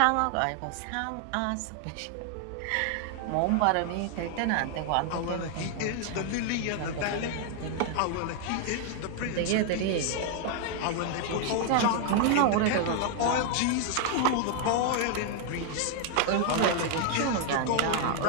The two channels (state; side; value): different; both; correlation 0.00